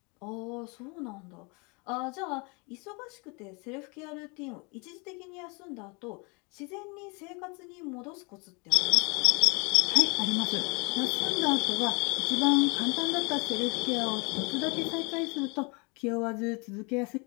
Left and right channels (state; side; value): quieter; right; 30.5 dB